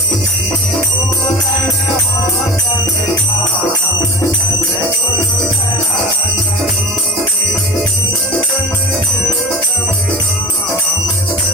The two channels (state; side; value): normal; both; correlation 0.38